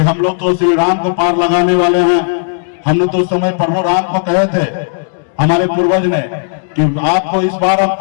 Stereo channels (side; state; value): right; silent; digital silence